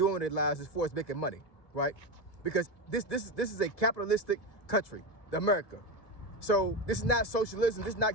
with their lives as far as making money, right? Because this is a capitalistic country, America. So this is not socialism, this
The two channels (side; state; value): right; late; 1.9 ms